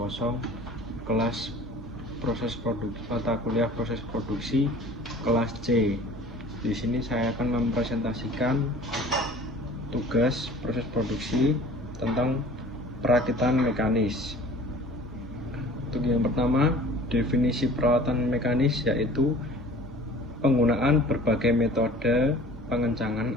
kelas proses produksi, mata kuliah proses produksi, kelas C. Di sini saya akan mempresentasikan tugas proses produksi tentang perakitan mekanis. Untuk yang pertama, definisi peralatan mekanis yaitu penggunaan berbagai metode pengencangan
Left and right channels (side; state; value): both; normal; correlation 0.47